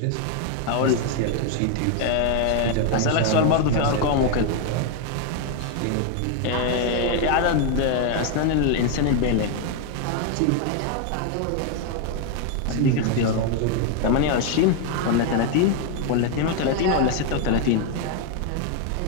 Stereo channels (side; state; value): both; different; correlation 0.00